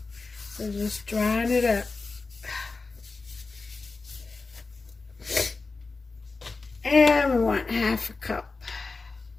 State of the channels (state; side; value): quieter; right; 3.9 dB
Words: So just drying it up. And we want half a cup.